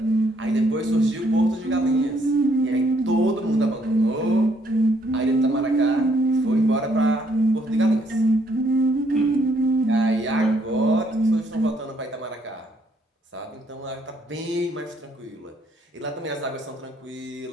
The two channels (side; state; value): both; normal; correlation 0.69